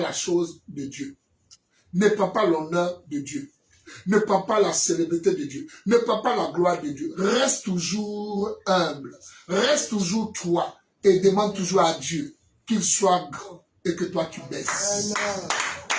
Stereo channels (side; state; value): both; identical; correlation 1.00